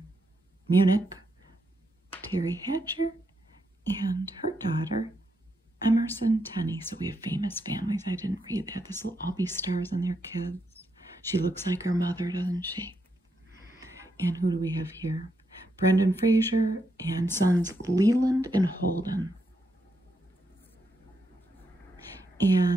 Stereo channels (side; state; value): both; normal; correlation 0.81